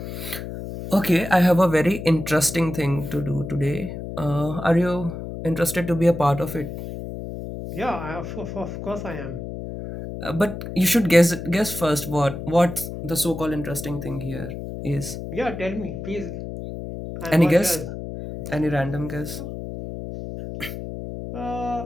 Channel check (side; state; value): left; noise; hum, 8 dB below the sound